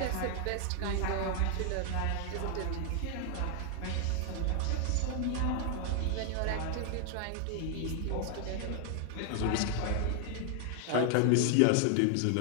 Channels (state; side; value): different; both; correlation 0.00